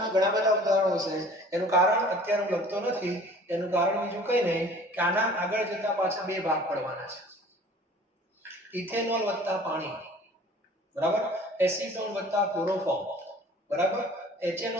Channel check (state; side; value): normal; both; correlation 0.48